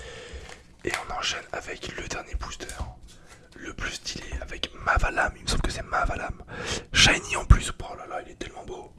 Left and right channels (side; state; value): both; identical; correlation 1.00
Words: Et on enchaîne avec le dernier booster. Le plus stylé avec Mavalam. Il me semble que c'est Mavalam. Shiny en plus. Oh là là, il est tellement beau.